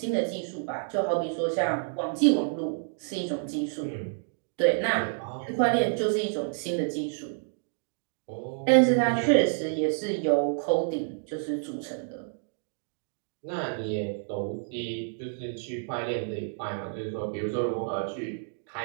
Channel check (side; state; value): left; silent; digital silence